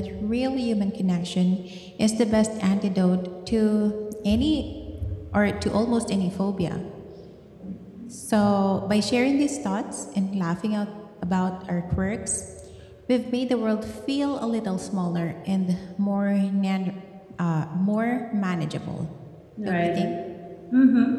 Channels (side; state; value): both; identical; correlation 1.00